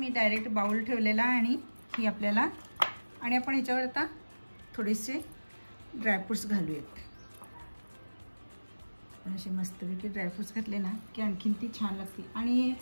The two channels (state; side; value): inverted; both; correlation -1.00